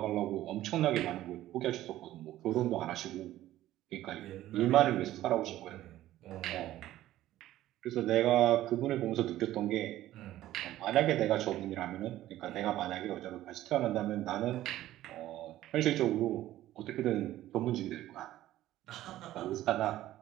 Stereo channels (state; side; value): quieter; left; 14.3 dB